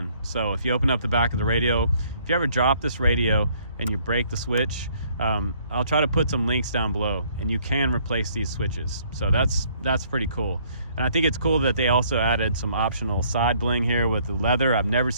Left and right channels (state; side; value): inverted; both; correlation -0.63